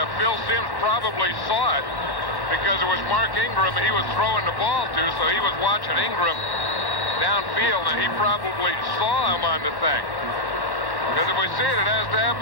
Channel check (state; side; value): late; right; 1.1 ms